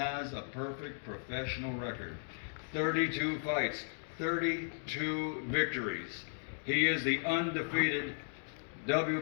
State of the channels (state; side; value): silent; right; digital silence